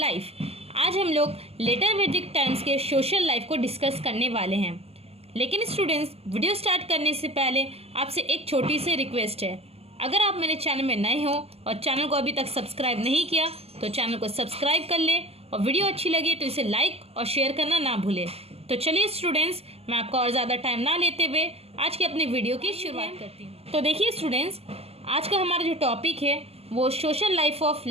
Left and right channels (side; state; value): left; late; 0.29 ms